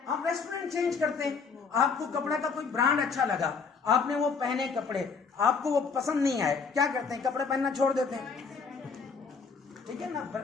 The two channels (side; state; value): right; quieter; 5.3 dB